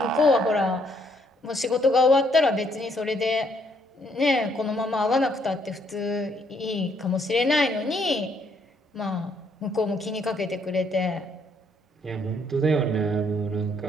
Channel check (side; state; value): both; normal; correlation 0.70